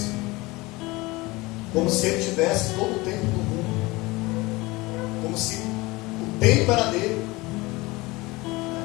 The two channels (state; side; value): quieter; right; 22.2 dB